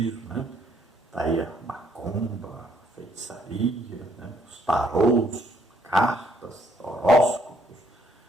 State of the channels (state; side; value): normal; both; correlation 0.68